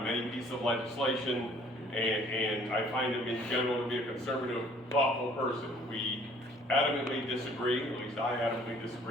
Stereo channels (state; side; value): normal; both; correlation 0.57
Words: many pieces of legislation, and I find him in general to be a conservative, thoughtful person. We adamantly disagree, at least I adamantly